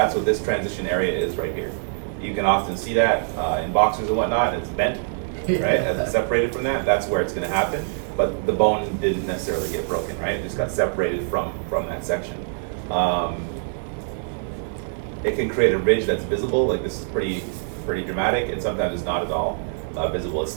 what this transition area is right here. You can often see that in boxers and whatnot. It's bent, right? As it's separated from that, that's where it's going to happen. But the bone didn't necessarily get broken, right? It just got separated from that section. It can create a ridge that's visible. Like this is pretty dramatic, and sometimes it's not at all visible. It's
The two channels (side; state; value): left; silent; digital silence